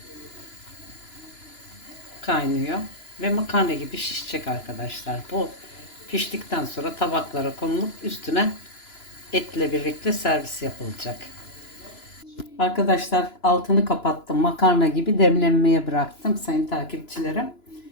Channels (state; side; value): late; right; 2.9 ms